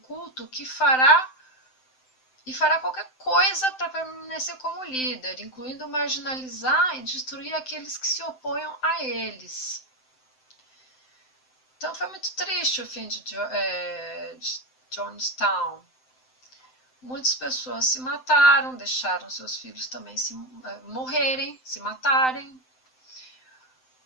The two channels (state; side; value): late; right; 7.8 ms